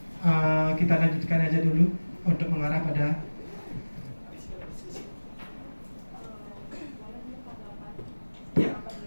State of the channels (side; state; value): both; inverted; correlation -1.00